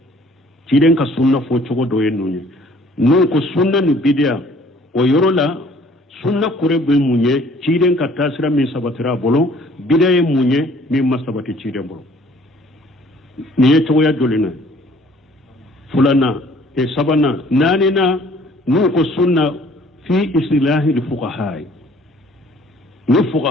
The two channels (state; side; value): normal; both; correlation 0.56